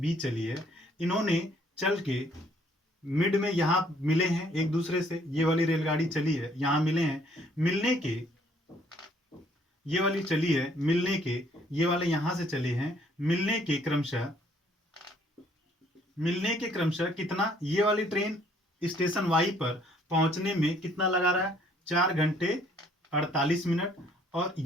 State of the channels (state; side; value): normal; both; correlation 0.63